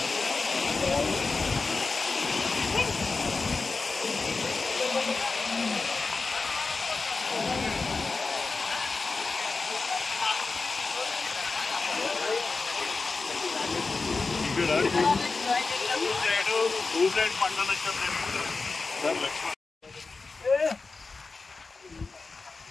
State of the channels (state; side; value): quieter; right; 4.1 dB